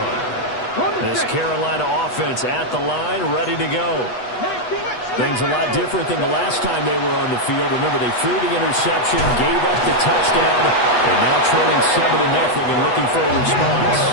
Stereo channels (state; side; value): late; right; 8.1 ms